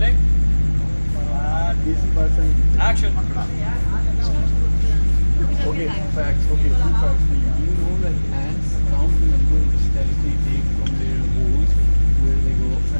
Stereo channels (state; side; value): inverted; both; correlation -1.00